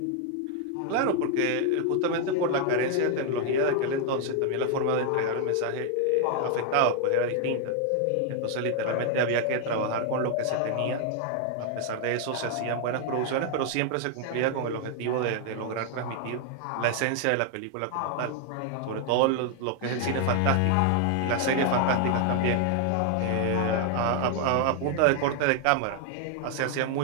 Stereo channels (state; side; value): different; both; correlation 0.00